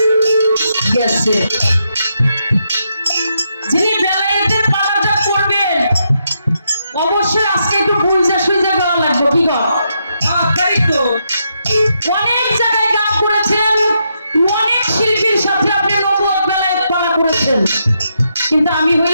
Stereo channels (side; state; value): both; inverted; correlation -0.80